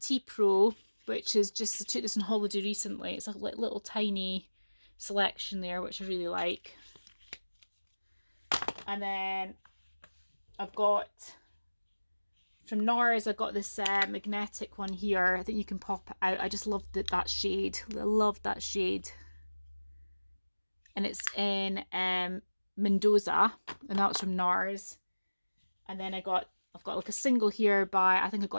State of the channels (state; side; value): inverted; both; correlation -1.00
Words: Pro, which is just, I took this on holiday recently. It's a little tiny selection there, which I really like. And then I've got from Noras, I've got this magnetic one here. I think you can pop it out. I just love that shade. I love that shade. And it's in Mendoza, and that was from Nars. And then I've got like a single here by, I think I